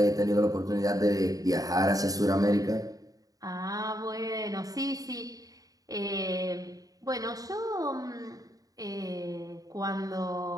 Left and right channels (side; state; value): left; late; 0.17 ms